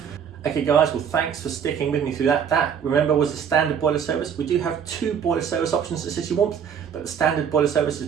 Okay guys, well thanks for sticking with me through that. That, remember, was the standard boiler service. We do have 2 boiler service options at City Warmth, but the standard boiler service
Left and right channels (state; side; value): quieter; left; 7.7 dB